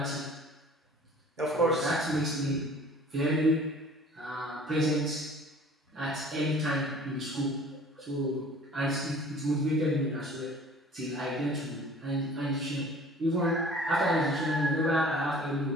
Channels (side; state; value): both; normal; correlation 0.48